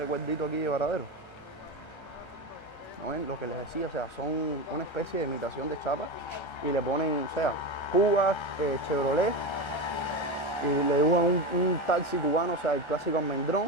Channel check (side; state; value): right; late; 1.3 ms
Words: aquí de Varadero. ¿No ven? Lo que les decía, o sea, son una especie de imitación de chapa y le ponen, o sea, Cuba, Chevrolet, y le dibujan un taxi cubano, o sea, el clásico